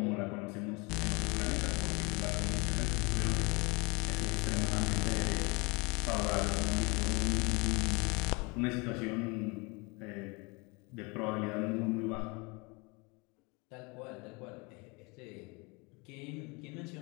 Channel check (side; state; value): right; quieter; 28.5 dB